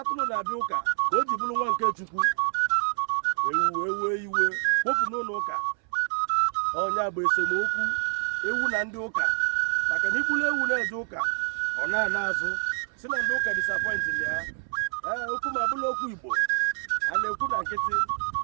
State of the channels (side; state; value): left; silent; 58 dB below the other